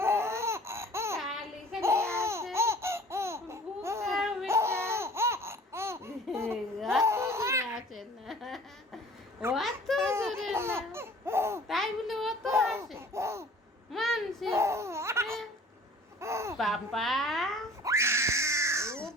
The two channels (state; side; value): normal; both; correlation 0.49